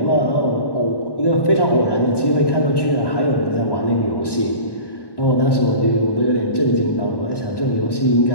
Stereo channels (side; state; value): right; late; 1.1 ms